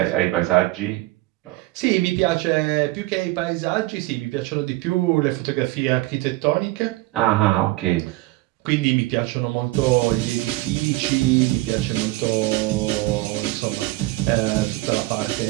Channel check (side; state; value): left; quieter; 19.8 dB